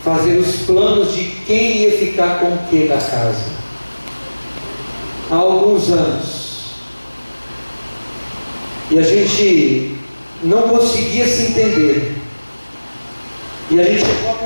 fazer os planos de quem ia ficar com o que da casa. Há alguns anos. E a gente não conseguia se entender. E a gente chegou à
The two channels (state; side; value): inverted; both; correlation -1.00